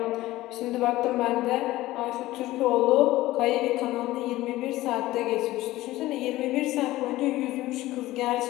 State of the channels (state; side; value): quieter; right; 16.9 dB